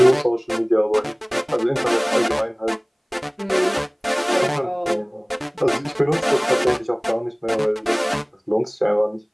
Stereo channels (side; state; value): both; identical; correlation 1.00